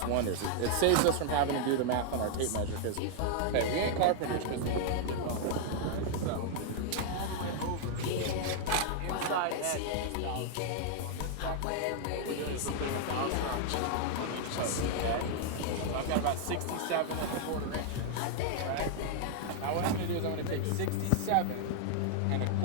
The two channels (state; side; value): different; both; correlation 0.00